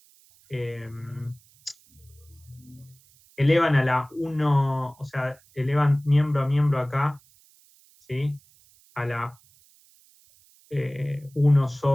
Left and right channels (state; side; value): noise; right; hiss, 30 dB below the sound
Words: elevan a la 1, o sea, elevan miembro a miembro acá, ¿sí? A la 1